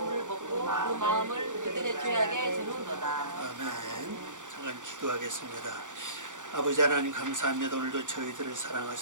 먹고 그 마음을 그들의 죄악에 드는도다. 아멘. 잠깐 기도하겠습니다. 아버지 하나님 감사합니다. 오늘도 저희들을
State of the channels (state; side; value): late; left; 0.86 ms